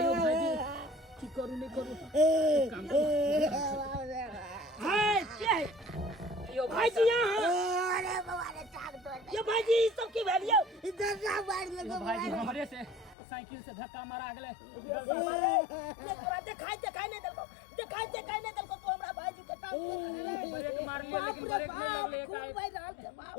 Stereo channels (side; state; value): right; drops out; at 13.2 s